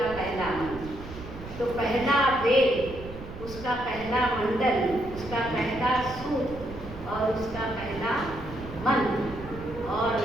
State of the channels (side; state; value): right; noise; rumble, 13 dB below the sound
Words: पहला मंत्र। तो पहला वेद, उसका पहला मंडल, उसका पहला सूत्र और उसका पहला मंत्र। और